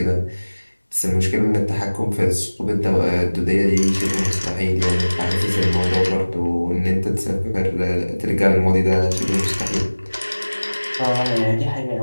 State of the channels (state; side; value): inverted; both; correlation -1.00